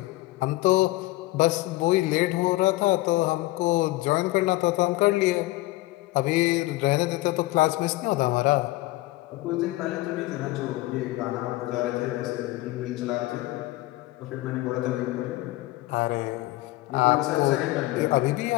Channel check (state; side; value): quieter; right; 18.9 dB